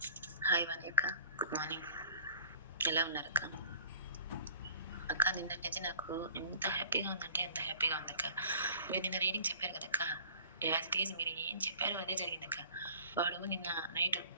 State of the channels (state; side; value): inverted; both; correlation -0.48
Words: హాయ్ వాణి అక్క, గుడ్ మార్నింగ్, ఎలా ఉన్నారు అక్క? అక్క నిన్నటి నుంచి నాకు ఎంత హ్యాపీగా ఉందంటే ఎంత హ్యాపీగా ఉందక్క. మీరు నిన్న రీడింగ్ చెప్పారు కదక్క, యాజ్ ఇట్ ఈజ్ మీరు ఏం చెప్పారో అదే జరిగిందక్క. వాడు నిన్న నైట్